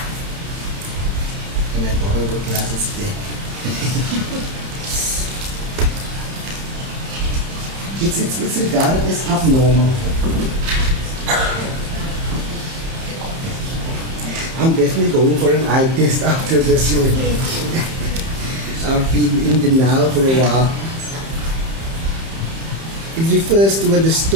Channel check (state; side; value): late; left; 30 ms